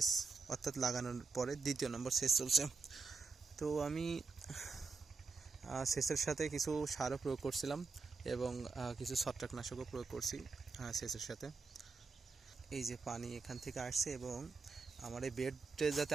অর্থাৎ লাগানোর পরে দ্বিতীয় নম্বর সেচ চলছে। তো আমি সেচের সাথে কিছু সারও প্রয়োগ করছিলাম এবং কিছু ছত্রাকনাশকও প্রয়োগ করছি সেচের সাথে। এই যে পানি এখান থেকে আসছে এবং আমার এই বেডে যাতে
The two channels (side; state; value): left; quieter; 4.5 dB